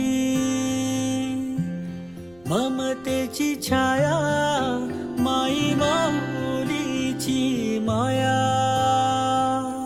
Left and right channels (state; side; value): noise; left; rumble, 29 dB below the sound